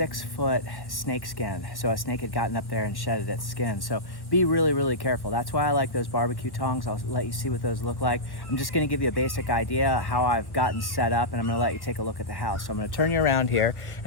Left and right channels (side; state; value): right; late; 1.1 ms